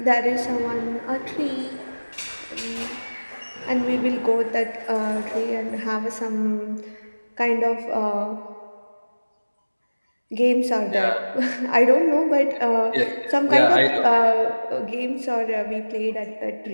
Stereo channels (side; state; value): both; inverted; correlation -1.00